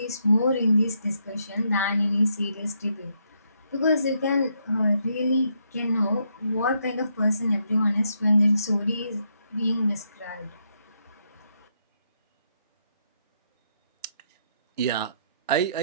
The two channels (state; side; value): inverted; both; correlation -0.77